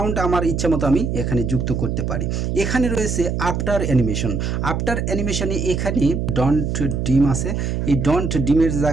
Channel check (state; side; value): noise; right; hum, 1 dB below the sound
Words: আমার ইচ্ছা মতো আমি এখানে যুক্ত করতে পারি। এখানে রয়েছে আফটার অ্যানিমেশন। আফটার অ্যানিমেশনে এখানে ডন্ট ডিম আছে, এই ডন্ট ডিমের